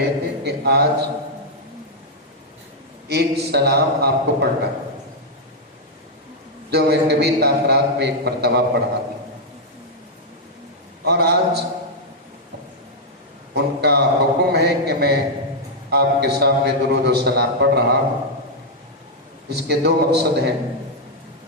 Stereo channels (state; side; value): normal; both; correlation -0.04